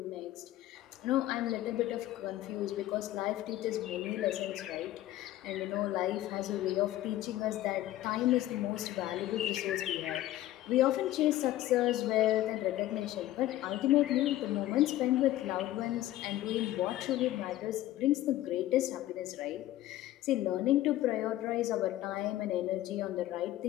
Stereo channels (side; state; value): right; quieter; 14.5 dB